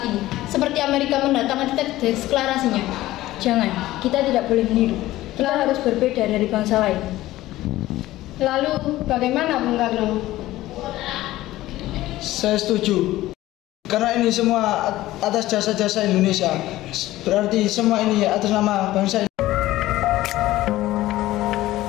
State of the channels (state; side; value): quieter; right; 16.1 dB